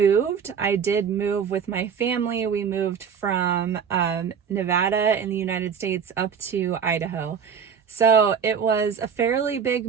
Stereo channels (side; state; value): left; quieter; 7.0 dB